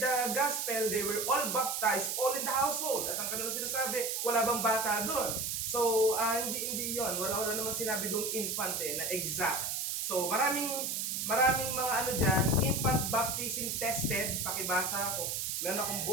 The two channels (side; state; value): right; noise; hiss, 1 dB below the sound